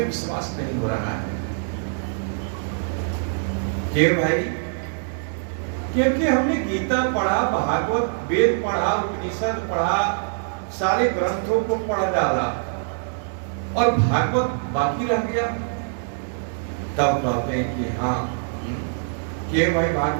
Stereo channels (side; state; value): left; silent; digital silence